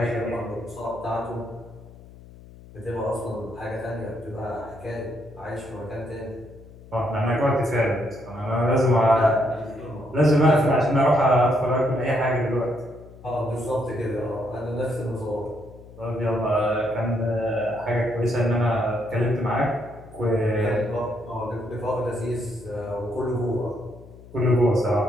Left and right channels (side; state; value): left; noise; hum, 20 dB below the sound